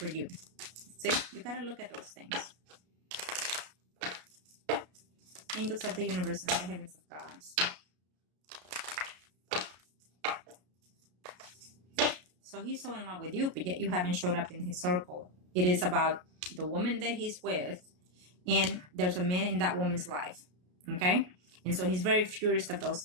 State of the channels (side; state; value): left; late; 33 ms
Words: you? See, you got to look at those things. Angels of the universe and the heavens of God. So he's so in love with you, but yet you haven't showed up in his circle. It is about the woman that he's with, and there's a man in that woman's life, okay? And so he's very furious of those